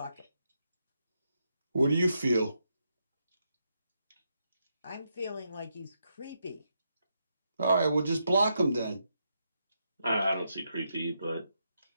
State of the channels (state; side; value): inverted; both; correlation -0.82